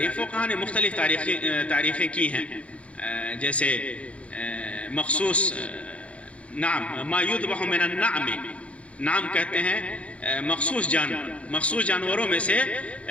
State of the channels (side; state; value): right; late; 0.063 ms